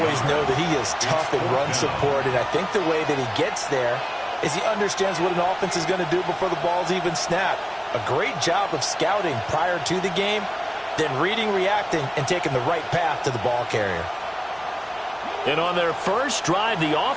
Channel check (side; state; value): both; identical; correlation 1.00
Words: know that he is tough in run support, and I think the way that he gets there is he understands what an offense is going to do before the ball's even snapped. A great job of scouting prior to the game, then reading, reacting, and taking the right path to the ball carrier. And on their first drive, the